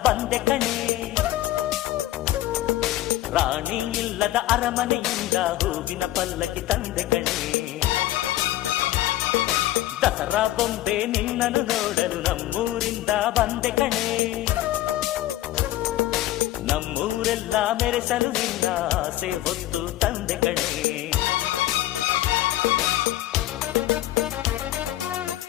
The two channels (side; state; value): right; quieter; 15.0 dB